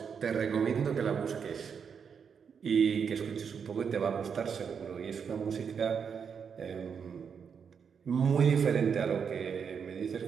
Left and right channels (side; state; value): left; quieter; 6.7 dB